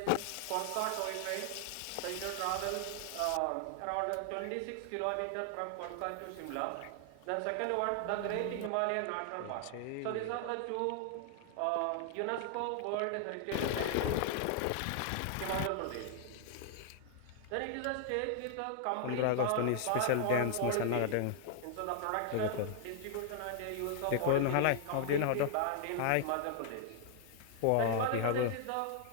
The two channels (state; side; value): different; both; correlation 0.00